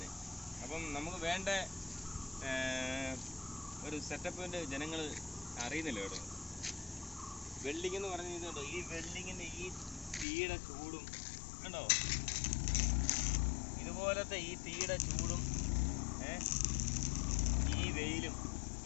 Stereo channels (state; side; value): drops out; right; at 10.2 s